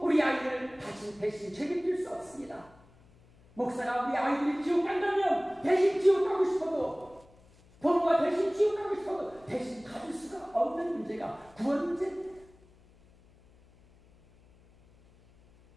우리 아이들을 대신 책임질 수 없습니다. 목사가 우리 아이들이 지옥 간다면 대신 지옥 가고 싶어도, 부모가 대신 지옥 가고 싶어도 대신 가질 수가 없는 문제가 구원 문제입니다.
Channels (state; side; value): noise; left; hum, 28 dB below the sound